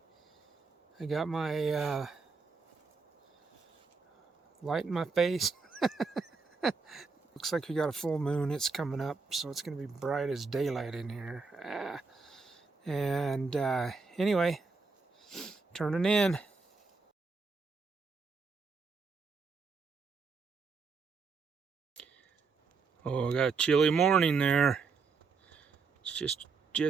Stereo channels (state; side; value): quieter; left; 4.6 dB